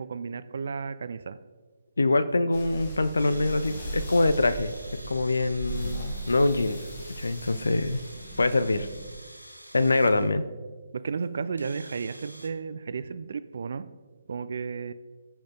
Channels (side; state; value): both; inverted; correlation -0.90